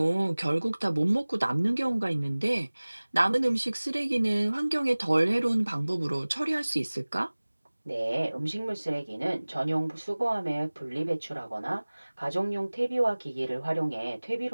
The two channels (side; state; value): both; inverted; correlation -1.00